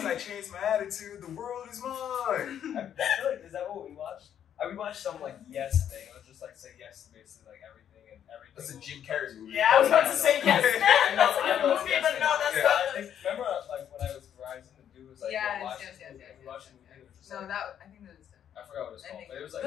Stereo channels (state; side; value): quieter; right; 9.5 dB